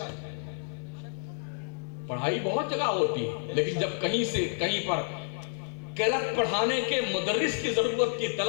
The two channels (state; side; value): silent; right; 55 dB below the other